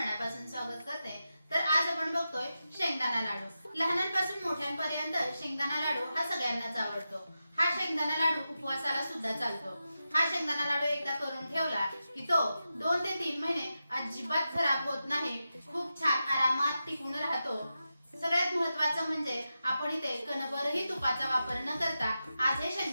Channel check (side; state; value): both; inverted; correlation -0.90